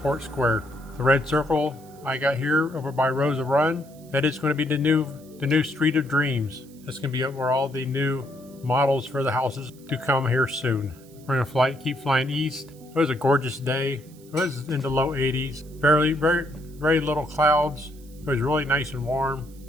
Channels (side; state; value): right; noise; hiss, 26 dB below the sound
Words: Square. The red circle I got here over by Rosa Run, that is going to be the new Street of Dreams. That's going to be where all the new models for the houses to come here soon. We're going to keep flying east. It was a gorgeous day. It was in the low 80s. Very little clouds. It was really nice and warm.